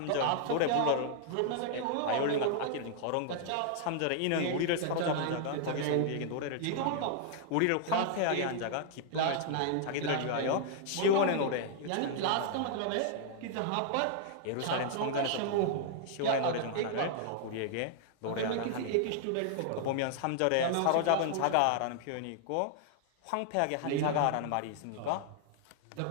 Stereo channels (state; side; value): different; both; correlation -0.01